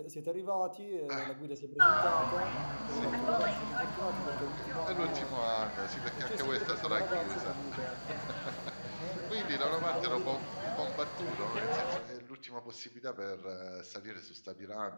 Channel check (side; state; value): both; inverted; correlation -1.00